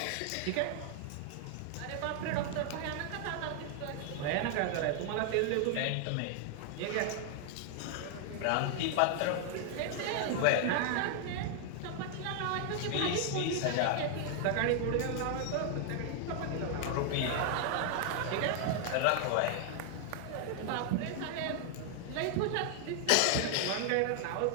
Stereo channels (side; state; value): both; different; correlation 0.00